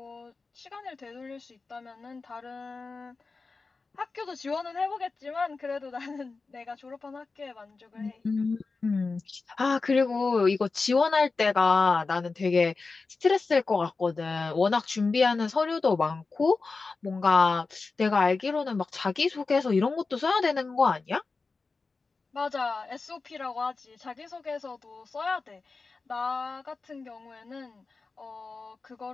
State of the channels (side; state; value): right; quieter; 4.1 dB